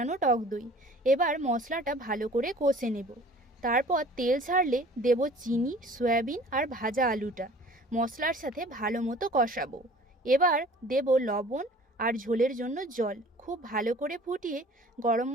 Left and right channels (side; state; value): both; normal; correlation 0.48